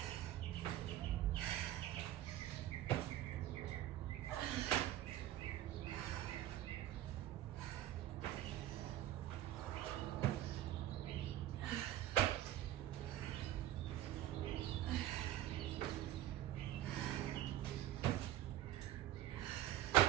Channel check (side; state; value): left; quieter; 13.1 dB